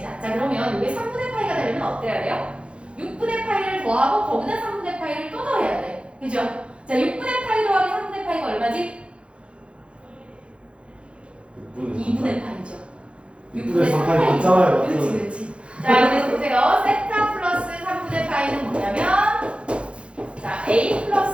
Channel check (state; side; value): late; left; 0.059 ms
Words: 자, 그러면 이게 3분의 파이가 되려면 어때야 돼요? 6분의 파이를 더하고 거기다 3분의 파이를 또 더해야 돼. 그죠? 자, 6분의 파이 더하기 3분의 파이가 얼마지? 2분의 파이죠. 6분의 3파이 맞잖아요. 그렇지, 그렇지. 자, 그래서 보세요. 세타 플러스 3분의 파이는 뭐냐면 자, A